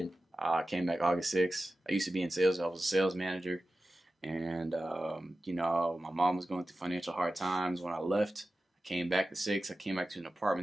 I came back August 6th. I used to be in sales. I was a sales manager. And, my mom was going through financial hard times. When I left, I came back the 6th. I came back to an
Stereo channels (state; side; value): normal; both; correlation 0.94